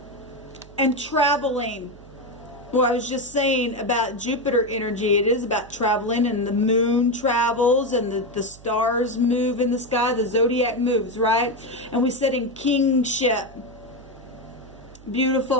And traveling. Well, I was just saying about Jupiter energy. It is about traveling, and the moon travels, and the stars move in the sky. The zodiac moves, right? And we said in kingship.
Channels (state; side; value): noise; right; hum, 21 dB below the sound